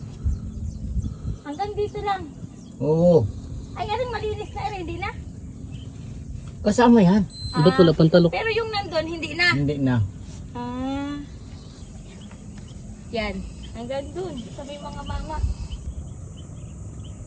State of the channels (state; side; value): identical; both; correlation 1.00